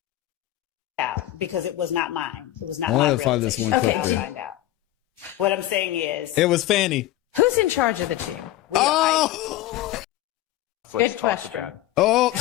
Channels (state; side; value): quieter; right; 14.9 dB